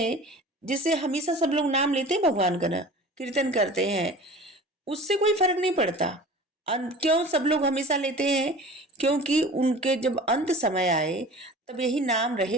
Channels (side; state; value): both; normal; correlation 0.40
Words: जैसे हमेशा सब लोग नाम लेते हैं भगवान का ना, कीर्तन करते हैं, उससे कोई फर्क नहीं पड़ता। क्यों सब लोग हमेशा लेते हैं? क्योंकि उनके जब अंत समय आए तब यही नाम रहे